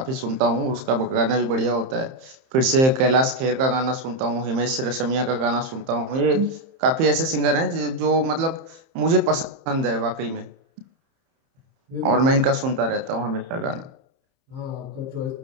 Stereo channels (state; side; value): late; left; 31 ms